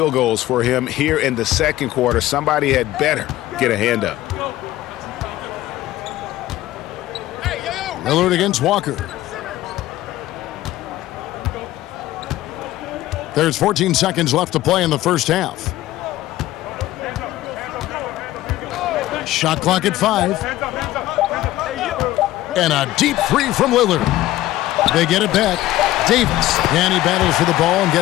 goals for him here in the second quarter. Somebody had better get a hand up. Lillard against Walker. There's 14 seconds left to play in the first half. Shot clock at 5. And a deep three from Lillard. They get it back. Davis, and he battles for the ball and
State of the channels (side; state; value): right; quieter; 15.4 dB